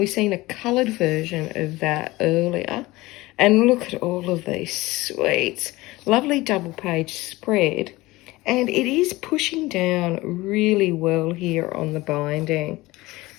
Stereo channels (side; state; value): right; quieter; 20.0 dB